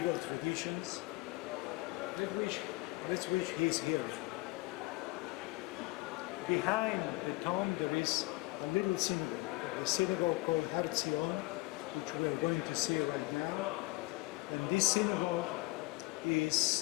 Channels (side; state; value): right; quieter; 22.5 dB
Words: traditions. Let's wish he's here. Behind the tomb there is a little synagogue, a synagogue called Har Zion, which we are going to see right now. And this synagogue is